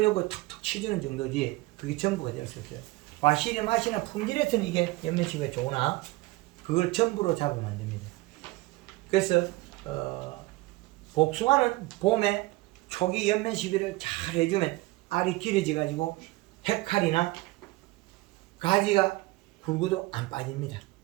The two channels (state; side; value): quieter; left; 20.6 dB